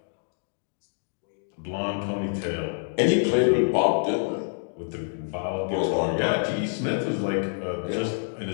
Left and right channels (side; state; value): right; silent; digital silence